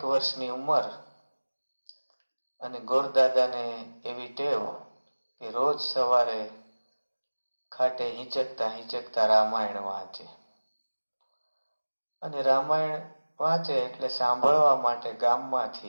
વર્ષની ઉંમર અને ગોરદાદાને એવી ટેવ કે રોજ સવારે ખાટે હિંચકતા રામાયણ વાંચે. અને રામાયણ વાંચે એટલે સાંભળવા માટે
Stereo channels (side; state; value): both; inverted; correlation -1.00